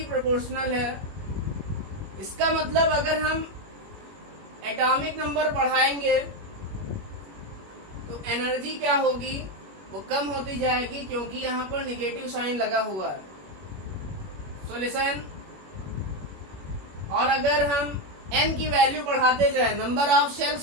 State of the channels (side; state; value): left; late; 21 ms